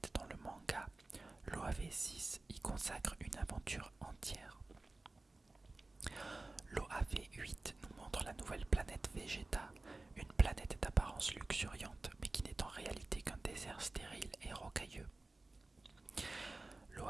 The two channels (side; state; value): left; quieter; 3.1 dB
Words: dans le manga, l'OAV-6 y consacre une aventure entière. L'OAV-8 nous montre la nouvelle planète Vegeta, une planète d'apparence luxuriante mais qui n'est en réalité qu'un désert stérile et rocailleux.